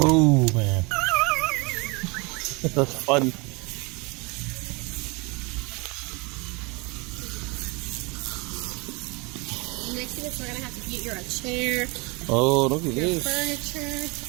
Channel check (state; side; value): quieter; left; 28.2 dB